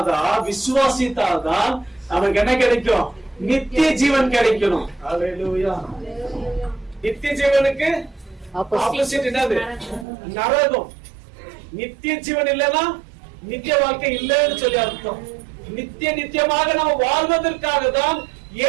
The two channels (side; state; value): left; drops out; at 10.1 s